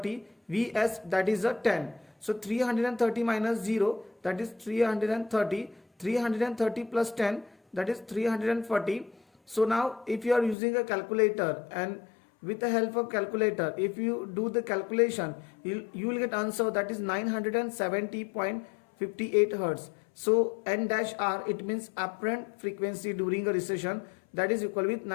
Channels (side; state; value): right; drops out; at 10.6 s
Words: Vs, that is a 10. So 330 minus 0, that is 330, 330 plus 10, that is 340. So now if you are using a calculator, and with the help of calculator, if you do the calculation, you will get answer, that is 970.58 Hz. So N dash R, it means apparent frequency during a recession, that is equal with